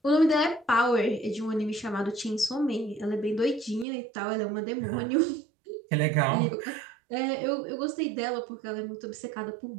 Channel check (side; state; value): left; drops out; at 3.9 s